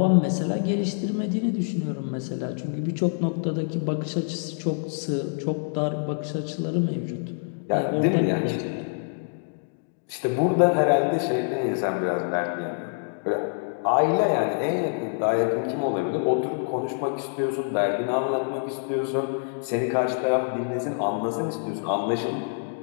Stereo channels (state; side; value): silent; right; digital silence